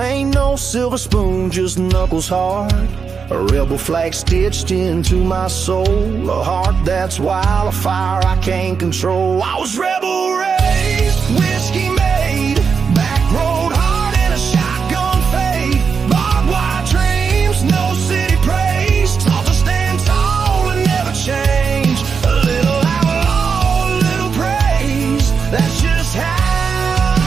no silver spoon, just knuckles hard. A rebel flag stitched into my soul. A heart that's wild, a fire I can't control. I was rebel raised, whiskey made, back road hard and a shotgun fade. Barbed wire dreams, no city praise. Taught to stand tall and never change. A little outlaw, a little praise. That's just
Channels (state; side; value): quieter; left; 5.8 dB